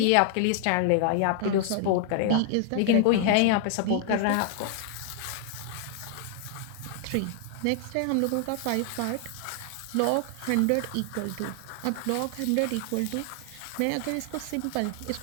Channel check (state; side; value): different; both; correlation 0.00